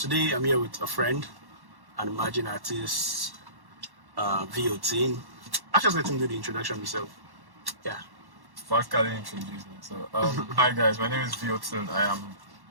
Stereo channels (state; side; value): late; left; 1.1 ms